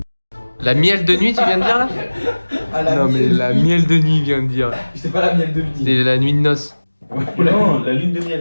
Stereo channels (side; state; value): both; inverted; correlation -1.00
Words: La miel de nuit, tu viens de dire là? Non, mais la miel de nuit, vient de dire. C'était pas la miel de nuit. C'est la nuit de noces. Non, la lune de